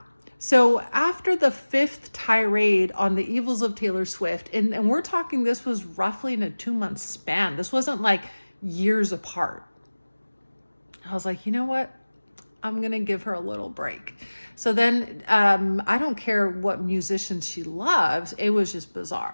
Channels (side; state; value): both; inverted; correlation -1.00